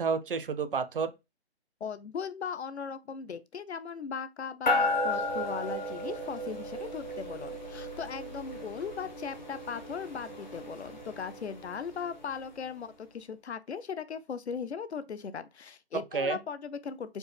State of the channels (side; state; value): both; normal; correlation 0.23